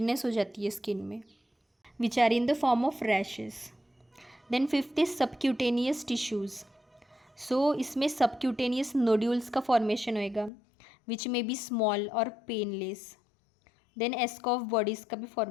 हो जाती है स्किन में which are in the form of rashes. Then fifth is subcutaneous tissues. So इसमें सबक्यूटेनियस नोड्यूल्स का फॉर्मेशन होएगा विच में बी स्मॉल और पेनलेस. देन एस्कॉफ बॉडीज़ का भी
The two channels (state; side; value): drops out; right; at 10.5 s